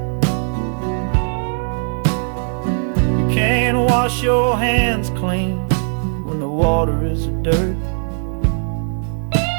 You wash your hands clean when the water is dirt.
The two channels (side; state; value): left; silent; 57 dB below the other